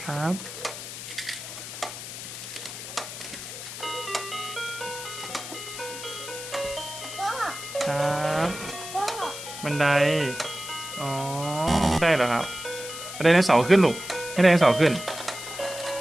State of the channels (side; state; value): left; noise; hiss, 10 dB below the sound